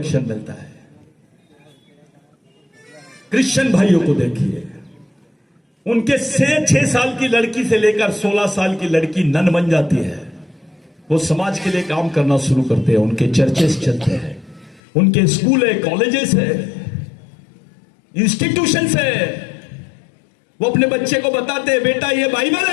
मिलता है। क्रिश्चियन भाइयों को देखिए, उनके 6 साल की लड़की से लेकर 16 साल की लड़की नन बन जाती है, वो समाज के लिए काम करना शुरू करते हैं, उनके चर्चेस चलते हैं, उनके स्कूल है, कॉलेजेस है, इंस्टीट्यूशंस है। वो अपने बच्चे को बताते हैं बेटा ये बाइबल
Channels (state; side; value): drops out; right; at 14.8 s